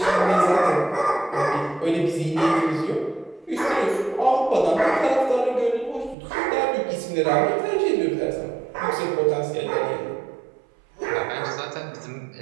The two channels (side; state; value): left; drops out; at 6.2 s